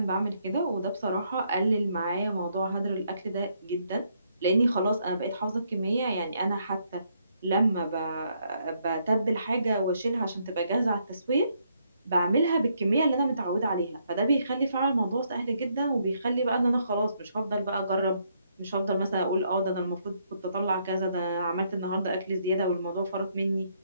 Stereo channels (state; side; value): inverted; both; correlation -0.73